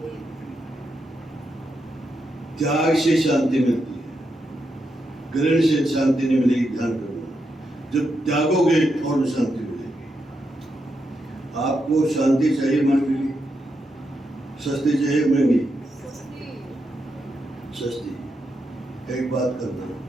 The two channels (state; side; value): normal; both; correlation 0.84